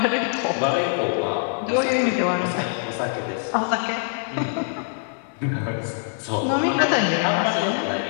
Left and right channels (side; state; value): right; silent; 62 dB below the other